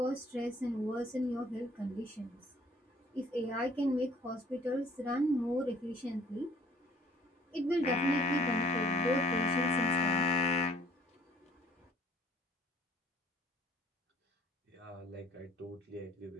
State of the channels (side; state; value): both; normal; correlation 0.57